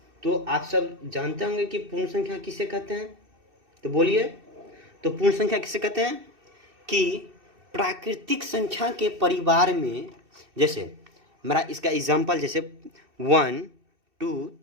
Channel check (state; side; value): late; left; 2.6 ms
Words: तो आप सब जानते होंगे कि पूर्ण संख्या किसे कहते हैं, तो बोलिए। तो पूर्ण संख्या किसे कहते हैं कि प्राकृतिक संख्या के परिवार में, जैसे मेरा इसका एग्जांपल जैसे 1 2